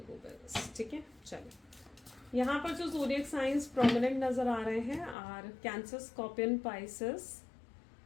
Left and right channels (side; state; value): right; drops out; at 5.2 s